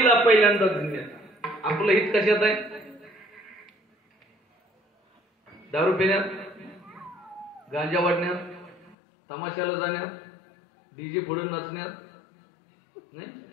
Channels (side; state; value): right; drops out; at 9.0 s